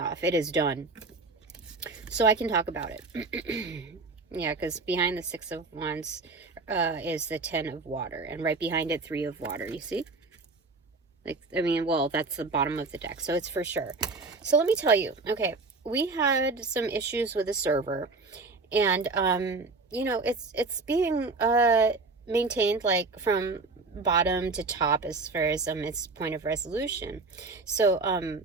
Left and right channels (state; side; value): quieter; left; 3.7 dB